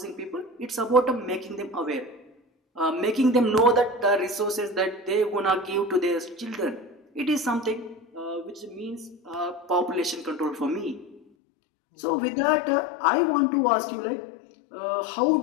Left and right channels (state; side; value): drops out; right; at 11.2 s